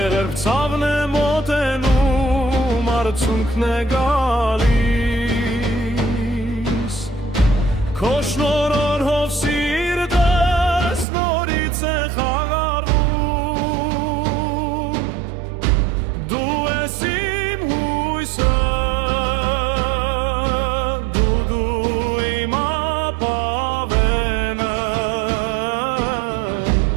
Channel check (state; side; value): drops out; left; at 11.1 s